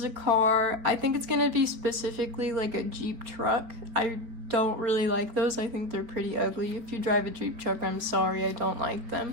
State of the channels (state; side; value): late; left; 4.5 ms